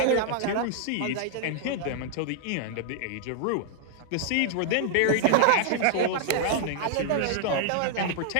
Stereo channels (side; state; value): both; different; correlation 0.00